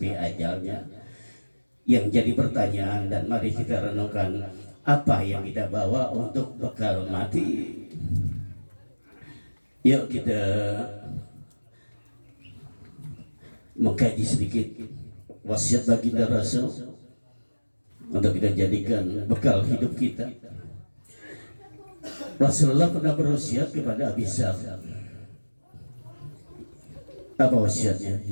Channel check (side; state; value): both; inverted; correlation -1.00